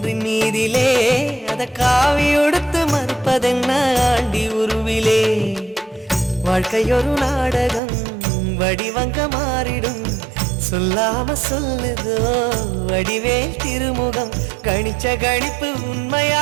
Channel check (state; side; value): drops out; left; at 7.8 s